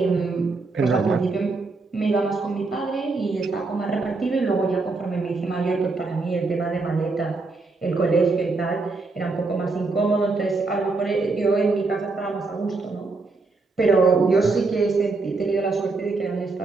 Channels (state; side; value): quieter; left; 3.7 dB